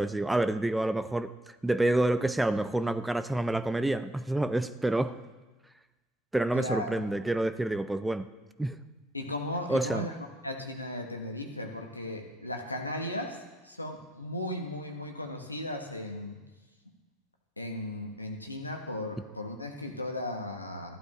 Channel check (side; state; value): both; normal; correlation 0.68